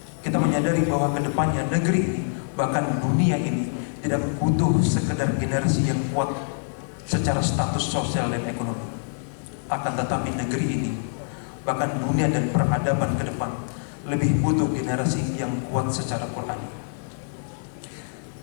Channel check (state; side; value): silent; right; digital silence